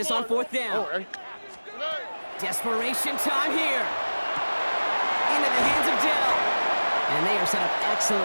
on 4th down. Desperation time here. Into the hands of Dell. And they are set up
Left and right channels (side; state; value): both; inverted; correlation -1.00